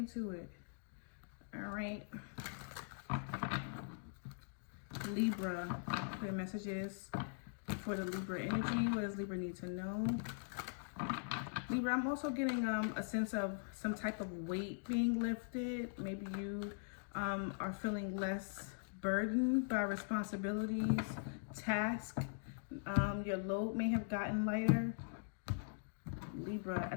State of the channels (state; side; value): silent; right; digital silence